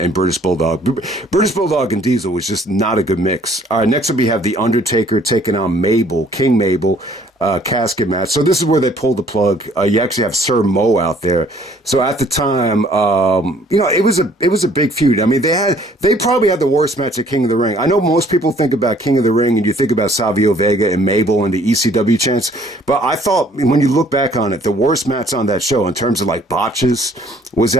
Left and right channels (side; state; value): both; normal; correlation 0.59